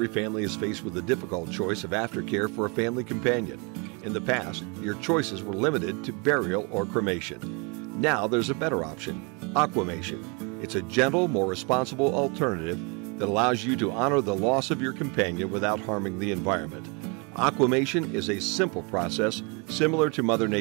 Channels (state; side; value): quieter; left; 31.6 dB